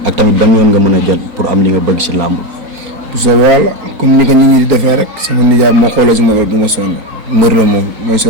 ak tamit ban yoon nga mën a jël pour am li nga bëgg si làmb. sa wàll comme ni ko nit ñi di defee rek sama nijaay moo xoolee si moom du ma sonn mbër la moom mooy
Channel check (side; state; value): left; late; 4.3 ms